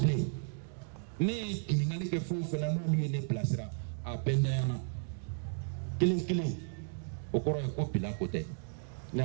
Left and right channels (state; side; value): silent; left; digital silence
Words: bilen ne ye ɲininkali kɛ fɛn o fɛn na n'olu ye ne bilasira a bɛɛ ntanyana kelen kelen o kɔrɔ ye ko bila ko tɛ ne